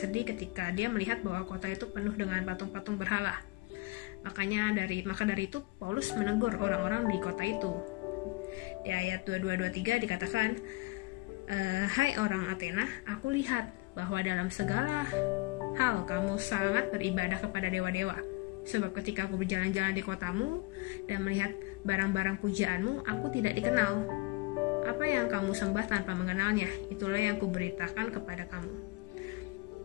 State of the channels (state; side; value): quieter; right; 23.3 dB